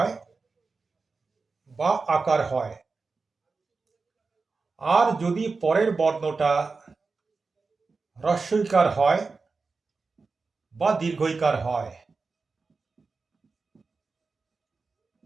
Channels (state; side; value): quieter; left; 4.3 dB